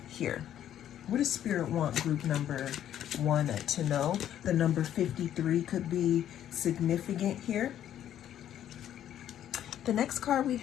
here. What does Spirit want group number 1 to know? The number 53 could be significant here. The next card we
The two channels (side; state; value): right; quieter; 10.9 dB